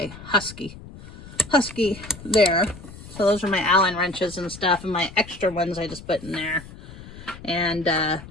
Husky there. So those are my Allen wrenches and stuff, and my extra ones I just put in there. And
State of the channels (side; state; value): left; noise; rumble, 16 dB below the sound